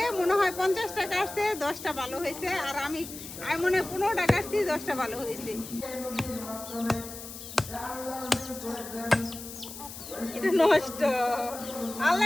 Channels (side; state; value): left; noise; hiss, 12 dB below the sound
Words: মনে হয় 50টা কাটছে, 10টা ভালো হয়েছে। আর আমি মনে হয় 15টা কাটছি, 10টা ভালো হয়েছে। এটা নষ্ট,